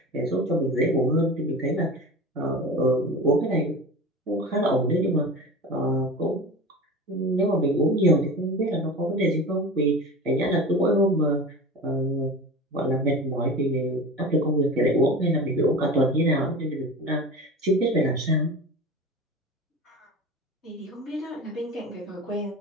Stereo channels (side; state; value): both; normal; correlation 0.32